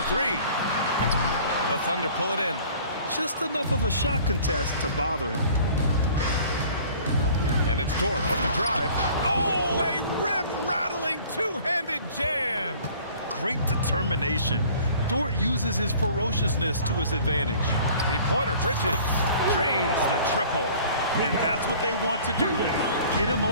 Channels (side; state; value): both; inverted; correlation -0.50